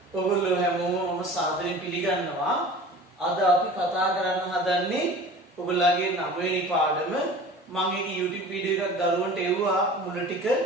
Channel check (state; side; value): normal; both; correlation 0.40